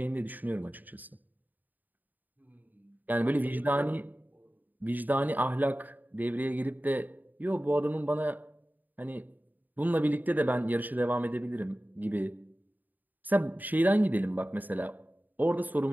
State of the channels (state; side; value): late; left; 0.085 ms